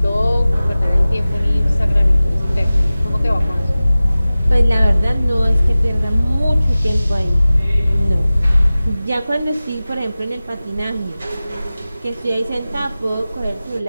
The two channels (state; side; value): inverted; both; correlation -0.97